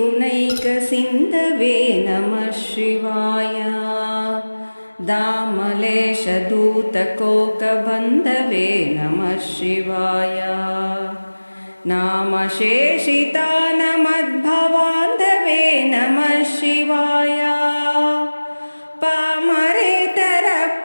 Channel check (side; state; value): both; inverted; correlation -1.00